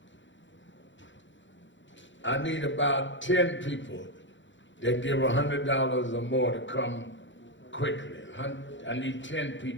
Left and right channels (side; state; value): right; late; 0.54 ms